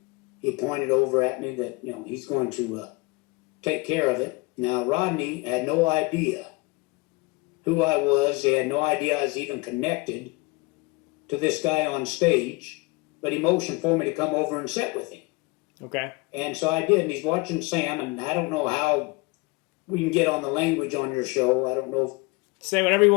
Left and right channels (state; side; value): quieter; right; 25.0 dB